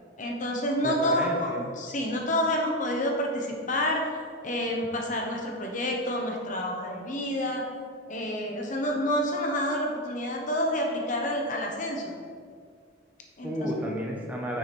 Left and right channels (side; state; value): both; normal; correlation 0.12